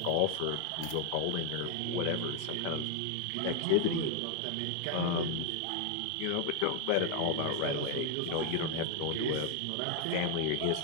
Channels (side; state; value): both; different; correlation 0.01